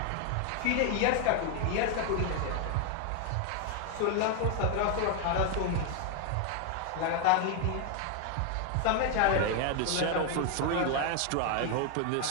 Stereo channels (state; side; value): different; both; correlation 0.01